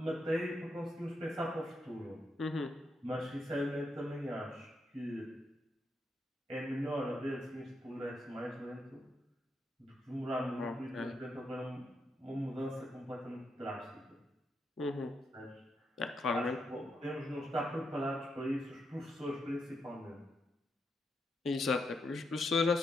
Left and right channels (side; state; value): both; normal; correlation 0.81